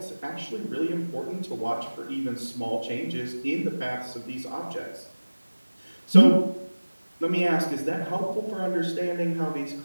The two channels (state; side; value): inverted; both; correlation -1.00